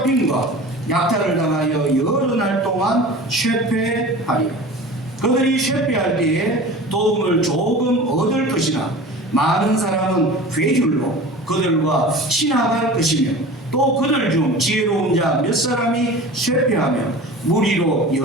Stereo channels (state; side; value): normal; both; correlation 0.37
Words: 약탈을 당하여 여러 날 동안 쇠퇴하리라. 그들이 쇠퇴할 때에 도움을 조금 얻을 것이나 많은 사람은 괴줄로 그들과 친합할 것이며 또 그들 중 지혜로운 자 몇 사람이 쇠퇴하며 무리로